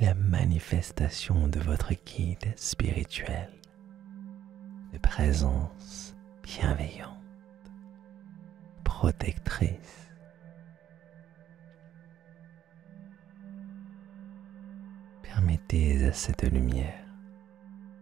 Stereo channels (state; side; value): quieter; left; 11.1 dB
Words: la manifestation de votre guide spirituel, de présence bienveillante, protectrice. Permettez à cette lumière